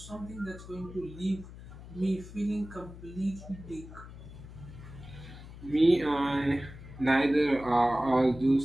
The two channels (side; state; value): left; noise; hum, 15 dB below the sound